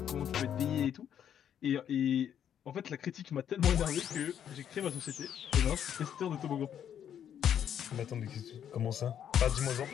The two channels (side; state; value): right; quieter; 9.3 dB